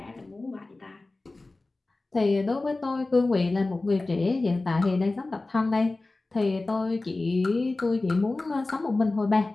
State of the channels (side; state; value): right; quieter; 3.2 dB